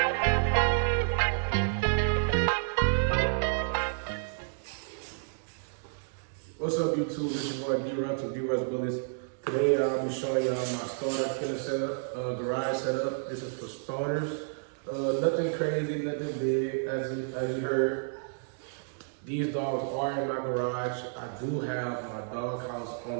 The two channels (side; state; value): left; silent; digital silence